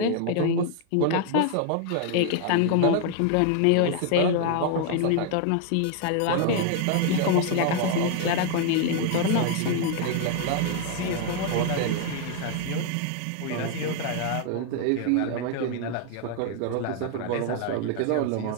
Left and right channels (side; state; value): both; different; correlation 0.00